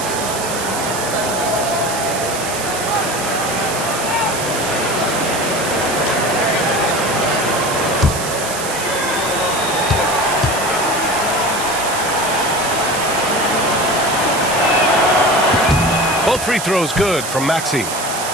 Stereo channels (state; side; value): noise; right; hiss, 6 dB below the sound